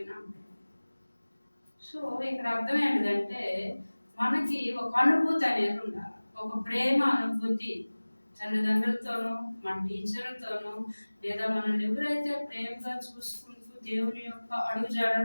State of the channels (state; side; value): inverted; both; correlation -1.00